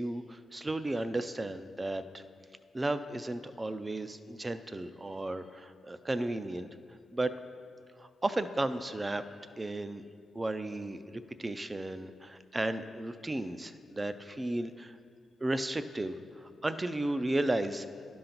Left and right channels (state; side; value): normal; both; correlation 0.96